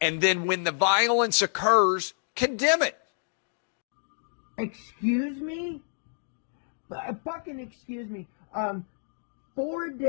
and then when the violence occurs, condemn it. Excuse me? Fucking excuse me. 4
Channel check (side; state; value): right; silent; digital silence